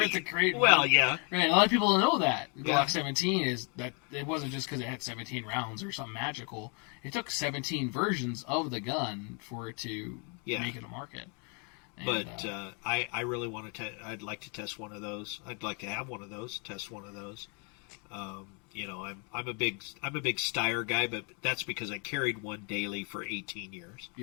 it to create. Well, one. yeah. Right. A lot of people don't know that Yeah. Glock 17 is that it wasn't just because it had 17 rounds or something magical. It took 17 versions of the gun for it to make it a market. But I really want to. I'd like to test one of those. I'd like to have one of those. Test one of those. I'm a big Styrac guy, but that's because I carried one daily for 18 years.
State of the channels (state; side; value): quieter; right; 35.2 dB